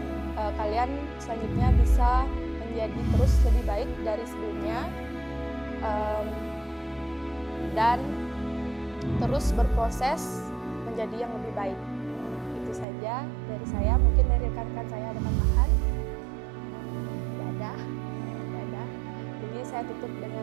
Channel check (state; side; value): drops out; left; at 12.9 s